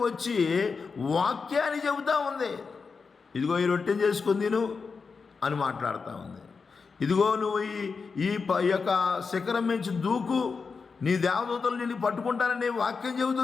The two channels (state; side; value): quieter; right; 5.0 dB